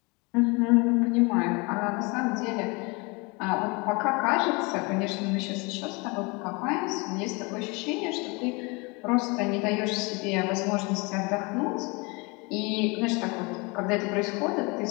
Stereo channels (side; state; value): right; quieter; 28.3 dB